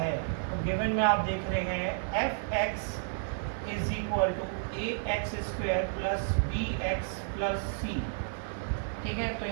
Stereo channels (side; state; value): left; silent; digital silence